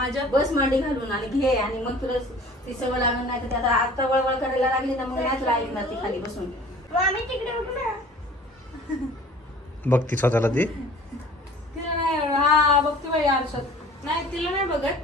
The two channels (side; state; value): both; normal; correlation 0.47